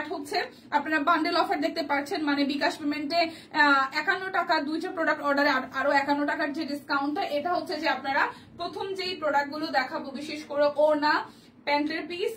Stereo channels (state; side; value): identical; both; correlation 1.00